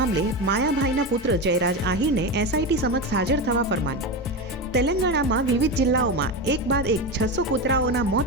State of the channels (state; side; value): normal; both; correlation 0.18